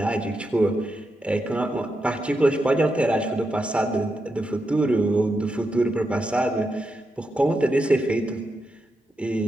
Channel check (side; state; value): both; normal; correlation 0.85